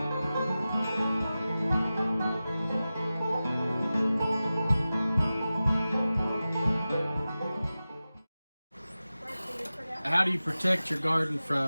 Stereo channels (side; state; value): both; inverted; correlation -0.95